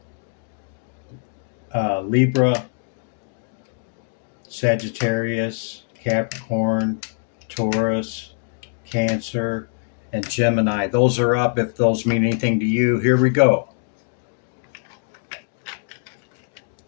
Libra, Sagittarius, Capricorn, Taurus, Cancer, and Gemini. Those are up if those mean anything to you. Here we go.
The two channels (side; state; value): right; silent; 63 dB below the other